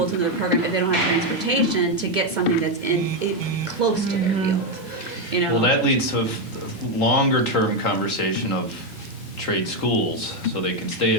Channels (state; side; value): normal; both; correlation 0.05